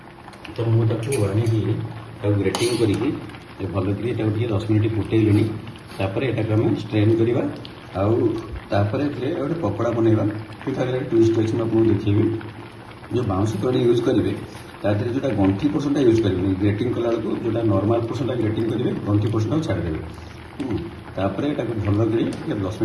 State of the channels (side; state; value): both; identical; correlation 1.00